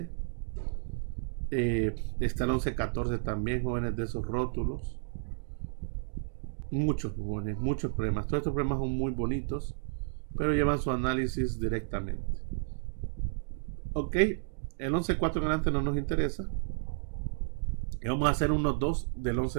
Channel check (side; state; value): left; silent; digital silence